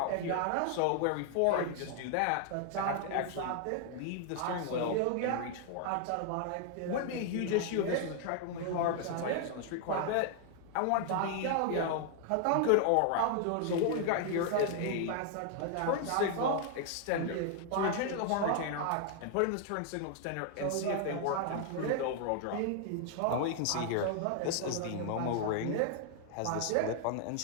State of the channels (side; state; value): both; different; correlation 0.00